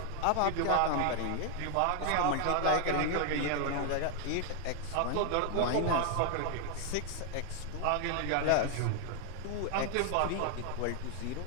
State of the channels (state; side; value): different; both; correlation 0.00